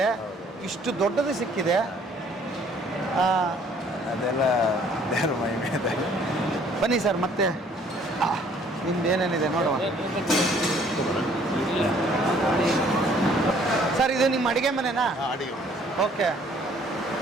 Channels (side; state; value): both; normal; correlation 0.59